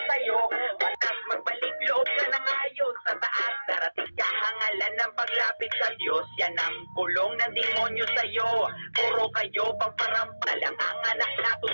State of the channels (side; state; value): both; inverted; correlation -1.00